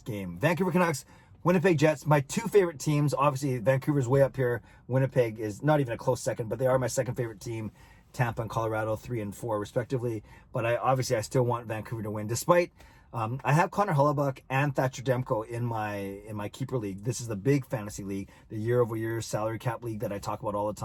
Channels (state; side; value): identical; both; correlation 1.00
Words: game. Vancouver Canucks, Winnipeg Jets, my two favorite teams. Obviously, Vancouver's way up here. Winnipeg is not even a close second, but they are my second favorite team. Tampa and Colorado, 3 and 4 respectively. But I still want Vancouver to win, despite I have Connor Hellebuyck and Thatcher Demko in my keeper league. This is the big fantasy league, the year-over-year salary cap league that I talk about all the